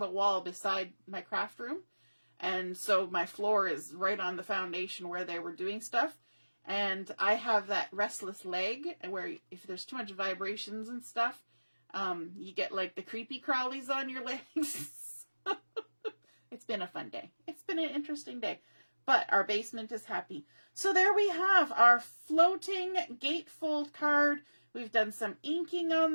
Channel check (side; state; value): both; inverted; correlation -1.00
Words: wall beside my craft room. And so my floor is right on the foundation where they were doing stuff. And I have that restless leg where if there's too much vibrations and stuff, you get like the creepy crawlies on your legs. It's been a fun day. It's been an interesting day. But our basement is happy. So there we have our floating gatefold card. We've done some inking on